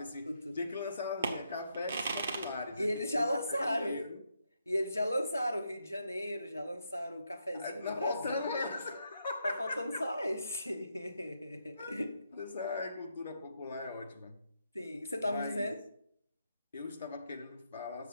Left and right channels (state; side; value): inverted; both; correlation -0.80